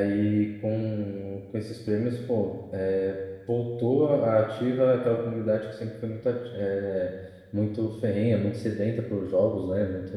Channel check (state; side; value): identical; both; correlation 1.00